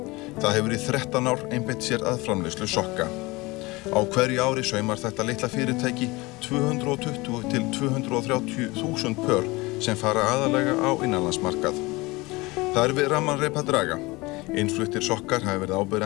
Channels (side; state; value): right; quieter; 22.8 dB